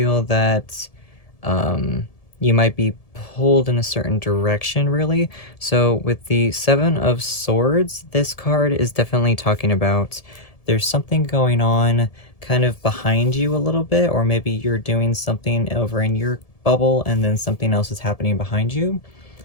that you might be pulled in a certain direction, really. So with the 7 of Swords, this card is definitely talking about there's something going on kind of behind you a little bit, or maybe you're doing something over in your bubble and then something else is happening behind you.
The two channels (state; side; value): late; right; 1.7 ms